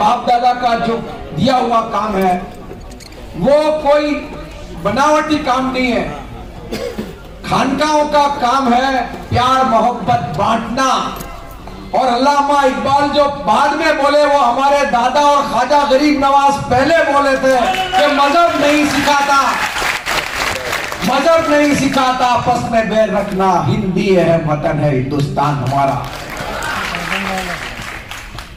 दादा का जो दिया हुआ काम है, वो कोई बनावटी काम नहीं है। खानकाहों का काम है प्यार मोहब्बत बांटना। और अल्लामा इकबाल जो बाद में बोले, वो हमारे दादा और ख्वाजा गरीब नवाज पहले बोले थे कि मजहब नहीं सिखाता, मजहब नहीं सिखाता आपस में बैर रखना, हिंदी है वतन है हिंदुस्तान हमारा।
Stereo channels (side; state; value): both; identical; correlation 1.00